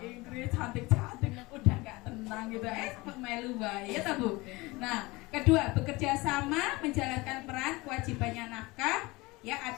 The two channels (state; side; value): quieter; right; 22.7 dB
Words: Inggris, cantik-cantik, udah nggak tenang gitu, melu bae ya Bu. Nah, kedua, bekerja sama menjalankan peran kewajibannya nafkah ya